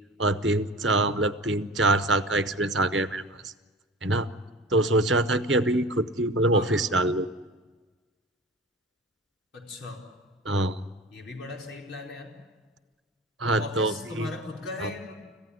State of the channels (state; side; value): normal; both; correlation 0.36